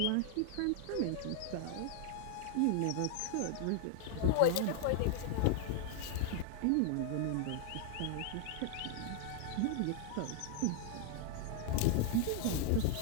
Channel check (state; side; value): different; both; correlation 0.00